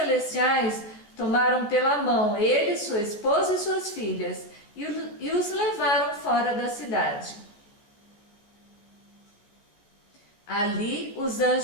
tomaram pela mão ele, sua esposa e suas filhas e os levaram fora da cidade. Ali os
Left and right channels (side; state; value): right; late; 14 ms